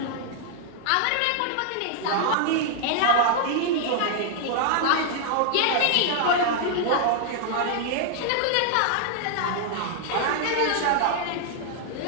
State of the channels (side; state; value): both; different; correlation 0.00